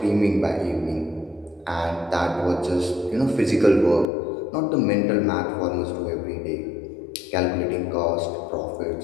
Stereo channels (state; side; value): drops out; right; at 4.0 s